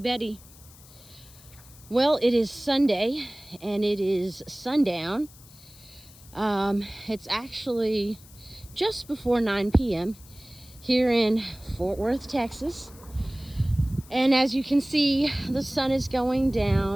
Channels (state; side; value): noise; left; hiss, 22 dB below the sound